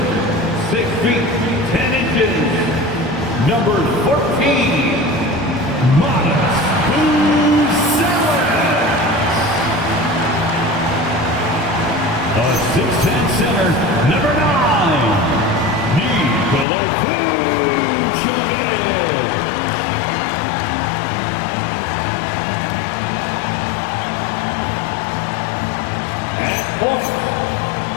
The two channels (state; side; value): drops out; right; at 16.7 s